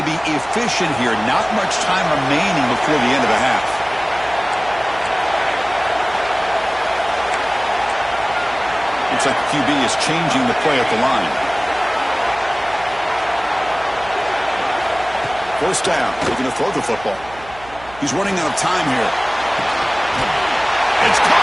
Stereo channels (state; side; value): noise; right; hum, 20 dB below the sound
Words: be efficient here. Not much time remaining before the end of the half. Looks like the QB is changing the play at the line. 1st down. Looking to throw the football. He's running out of time here. It's